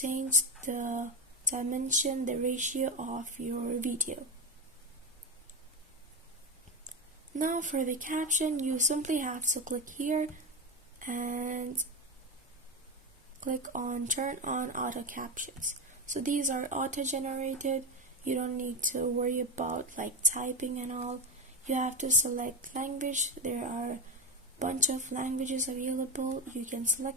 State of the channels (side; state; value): both; normal; correlation 0.15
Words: the dimension, the ratio of your video. Now for the caption, you simply have to click here and click on turn on auto captions. So these are auto generated. You don't need to worry about like typing and all. You have to select language. There are a bunch of languages available. You can